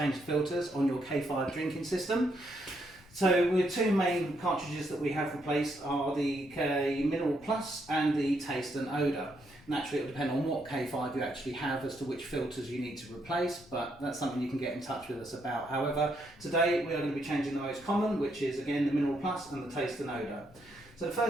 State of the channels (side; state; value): left; noise; rumble, 24 dB below the sound